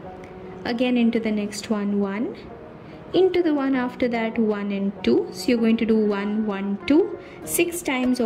again into the next one 1, into the one after that 1 and 2. So you're going to do 1, 1, 2 6 times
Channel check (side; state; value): both; identical; correlation 1.00